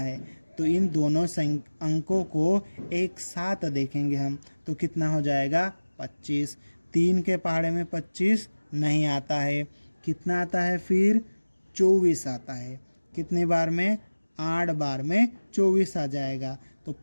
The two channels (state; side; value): inverted; both; correlation -1.00